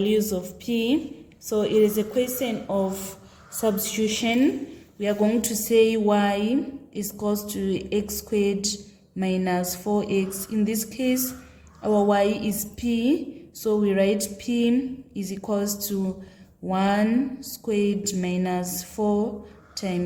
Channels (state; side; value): identical; both; correlation 1.00